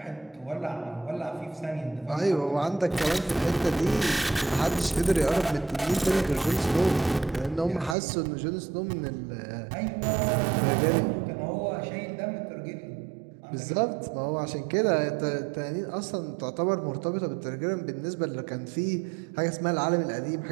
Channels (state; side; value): drops out; left; at 8.0 s